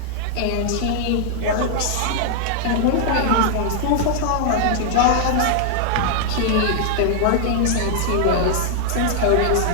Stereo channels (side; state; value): both; different; correlation -0.01